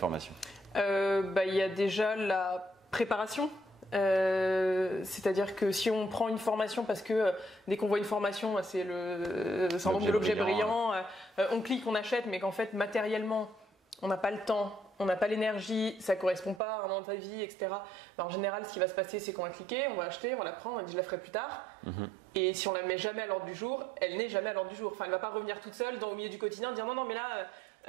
Il y a déjà la préparation. C'est-à-dire que si on prend une formation parce que dès qu'on voit une formation, c'est le syndrome de l'objet brillant, on clique, on achète, mais qu'en fait matériellement on n'a pas le temps, on n'a pas l'énergie, ça ne correspond pas à un moment de ta vie, etc. En général, ce qui va se passer, c'est qu'on va cliquer, on va acheter, on va la prendre, on dit je la ferai plus tard. Et si on la met jamais à l'ordre du jour, elle n'est jamais à l'ordre du jour. Enfin, elle ne va pas revenir toute seule au milieu du quotidien, dire non, mais là,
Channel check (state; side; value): drops out; left; at 16.6 s